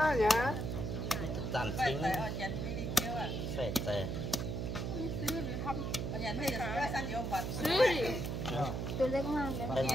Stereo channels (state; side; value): noise; right; hum, 2 dB below the sound